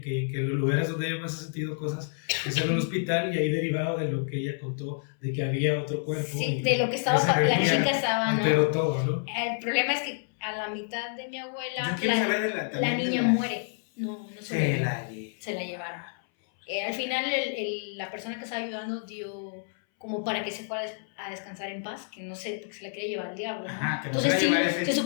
los lugares donde ella más ha sentido cosas es en el hospital, y ahí derivado de lo que ella contó, de que había otro cuerpo. Sí, y de lo que estaba, esa la energía chica estaba, ¿no? alteró todo, ¿no? El problema es que a la mitad de mi abuela, Yo quiero saber de la también de niña muere. No se la llevaron. Al final la persona que estaba ayudando dio como para que se fuera a descansar en paz, que no sé, porque se la quería llevar al diablo, ¿no? Ajá, que no Entonces se sí, la llevara ese- se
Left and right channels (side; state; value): right; silent; 59 dB below the other